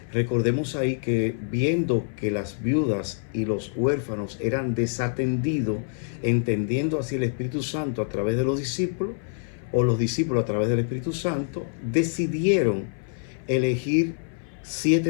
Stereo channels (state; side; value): silent; right; 59 dB below the other